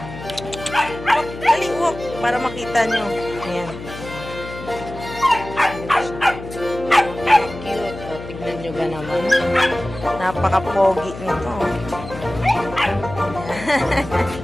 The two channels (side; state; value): left; noise; hum, 12 dB below the sound